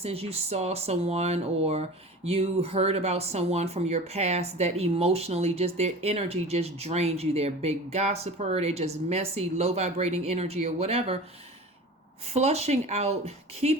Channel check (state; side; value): normal; both; correlation 0.36